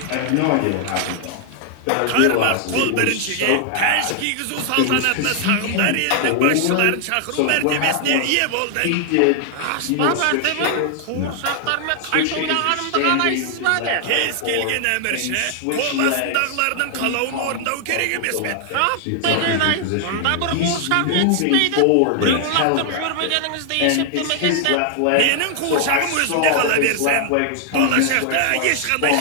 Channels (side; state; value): both; different; correlation 0.00